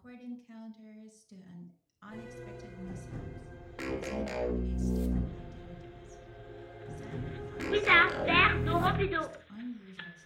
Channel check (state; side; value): identical; both; correlation 1.00